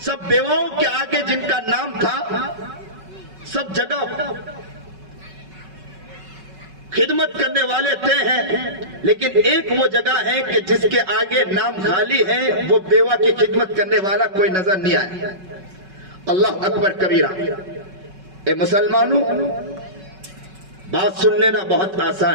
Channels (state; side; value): late; left; 5.3 ms